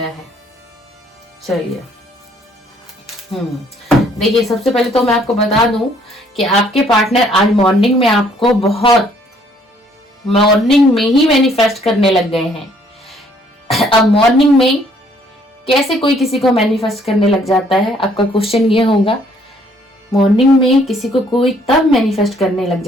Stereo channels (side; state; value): both; normal; correlation 0.63